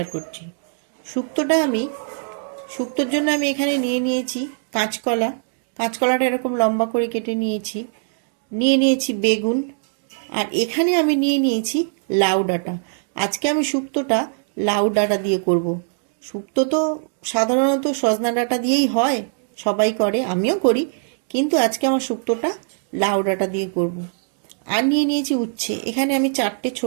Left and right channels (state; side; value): silent; left; digital silence